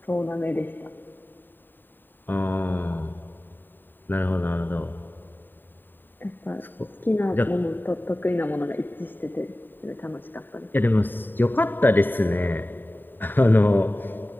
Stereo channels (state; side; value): late; right; 0.093 ms